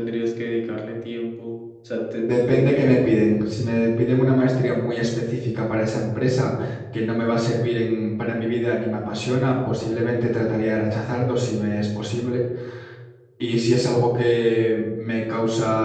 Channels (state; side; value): identical; both; correlation 1.00